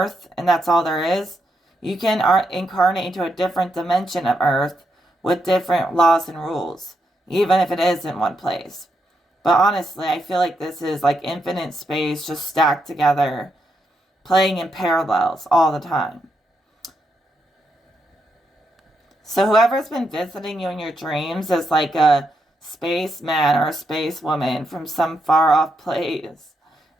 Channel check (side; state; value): both; normal; correlation 0.81